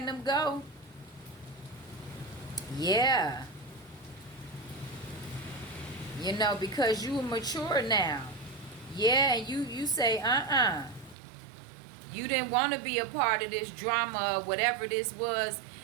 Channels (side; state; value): left; drops out; at 11.2 s